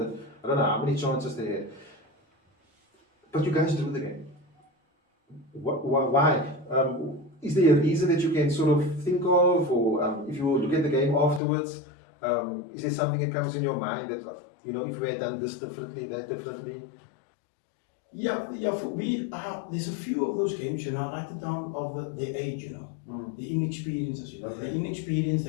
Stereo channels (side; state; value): right; drops out; at 11.4 s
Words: I don't know how many chances they had. But you guys drew the game. Why? Is there a reason that you can sort of think of, or if you look at the game afterwards, is there something that comes in your mind that, if we had done this differently, that differently? Yeah, for me, there's a few of those games, like the down of the age, the inexperiences, the inexperience,